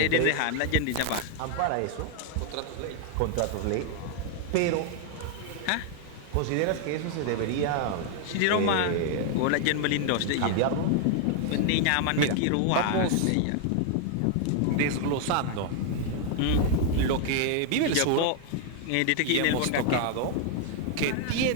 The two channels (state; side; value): different; both; correlation 0.00